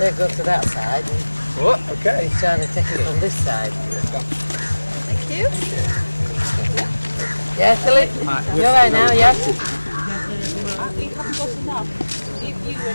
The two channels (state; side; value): inverted; both; correlation -1.00